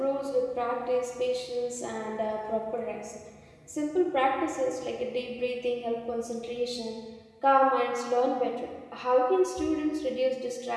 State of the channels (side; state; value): both; identical; correlation 1.00